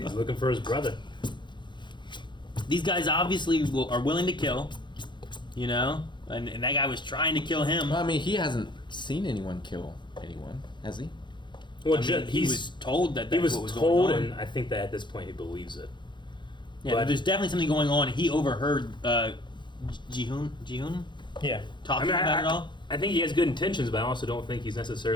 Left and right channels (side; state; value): right; late; 0.22 ms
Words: looking for his brother. These guys obviously are willing to kill, you know, and that guy was trying to kill him. Well, I mean, he hasn't seen anyone kill anyone, has he? Well, I mean, he was told that he that's was what was told, going on. and I think that at this point he believes it. Yeah, but there's definitely something going on. He overheard Jihoon Yeah. talking about it all. I think he has good intentions, but I also don't think he's